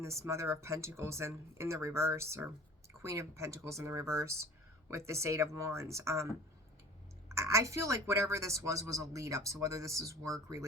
this Mother of Pentacles in the reverse, or Queen of Pentacles in the reverse with this Eight of Wands. I feel like whatever this was a lead up. So whether this is work,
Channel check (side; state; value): both; normal; correlation 0.43